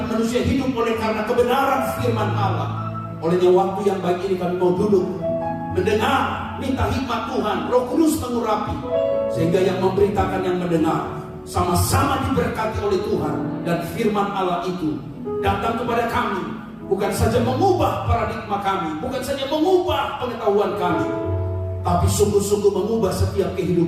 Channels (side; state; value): both; identical; correlation 1.00